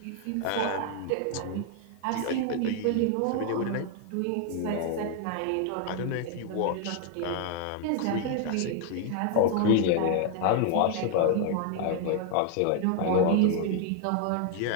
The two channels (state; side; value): different; both; correlation 0.00